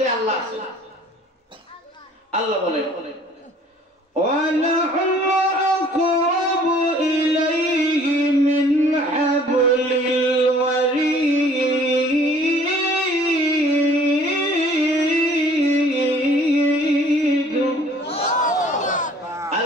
আল্লাহ আছে। আল্লাহ বলেন وَنَحْنُ أَقْرَبُ إِلَيْهِ مِنْ حَبْلِ الْوَرِيدِ।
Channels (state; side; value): normal; both; correlation 0.54